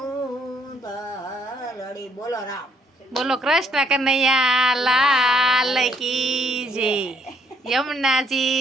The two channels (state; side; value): normal; both; correlation 0.69